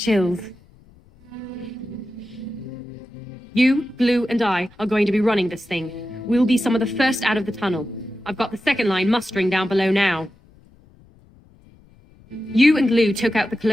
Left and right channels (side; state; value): left; noise; rumble, 27 dB below the sound